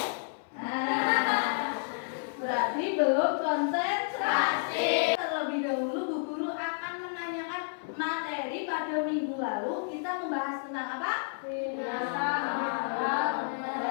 Berarti belum konsentrasi. Terlebih dahulu Bu Guru akan menanyakan materi pada minggu lalu. Kita membahas tentang apa? Binatang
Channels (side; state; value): right; silent; 57 dB below the other